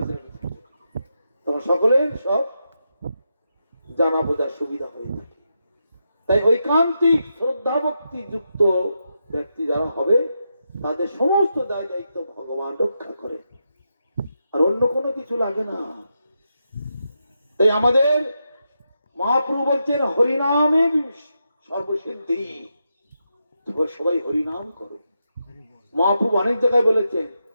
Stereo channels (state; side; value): inverted; both; correlation -0.85